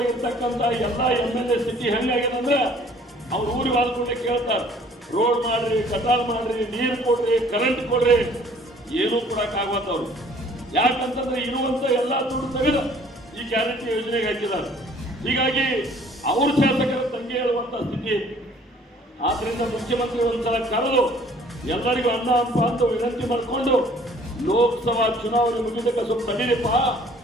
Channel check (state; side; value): normal; both; correlation 0.56